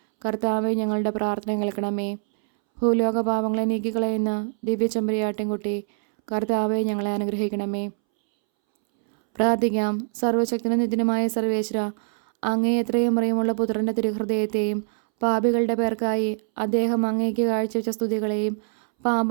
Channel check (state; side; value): silent; left; 63 dB below the other